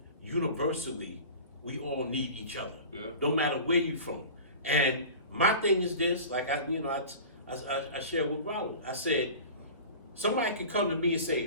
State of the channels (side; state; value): both; inverted; correlation -0.37